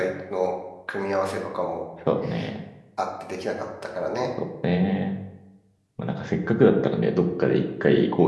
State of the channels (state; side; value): identical; both; correlation 1.00